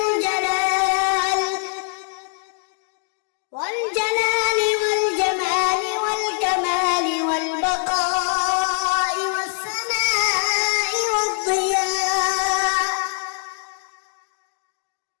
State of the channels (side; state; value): right; silent; digital silence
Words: والجمال والكمال والبقاء والسماء والضياء